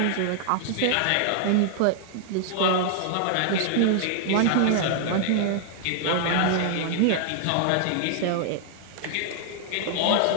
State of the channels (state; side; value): different; both; correlation -0.01